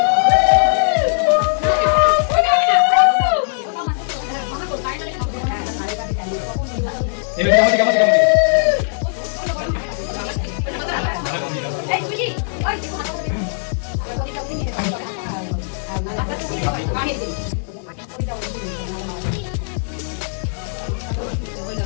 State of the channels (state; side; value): silent; right; digital silence